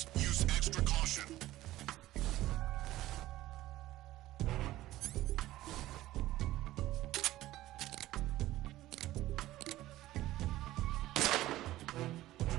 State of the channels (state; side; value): quieter; left; 15.7 dB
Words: Use extra caution.